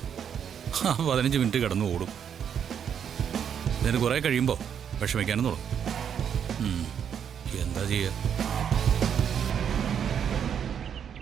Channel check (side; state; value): left; quieter; 8.2 dB